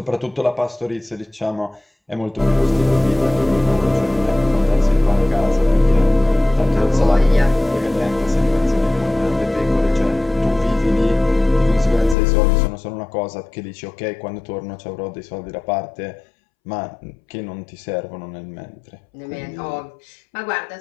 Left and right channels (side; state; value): right; drops out; at 12.2 s